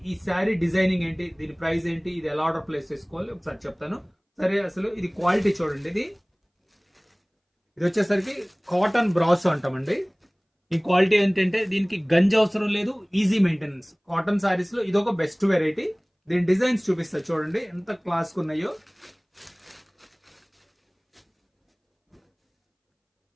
ఈ శారీ డిజైనింగ్ ఏంటి, దీని ప్రైస్ ఏంటి, ఇది ఎలా ఆర్డర్ ప్లేస్ చేసుకోవాలి ఒకసారి చెప్తాను. సరే, అసలు ఇది క్వాలిటీ చూడండి. ఇది వచ్చేసరికి కాటన్ బ్రాసో అంటామండి. ఈ క్వాలిటీ ఏంటంటే దీనికి గంజి అవసరం లేదు, ఈజీ మెయింటెనెన్స్. కాటన్ సారీస్ లో ఇది ఒక బెస్ట్ వెరైటీ. దీని డిజైన్స్ చూపిస్తా చూడండి ఎంత క్లాస్ ఉన్నాయో.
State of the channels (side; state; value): both; identical; correlation 1.00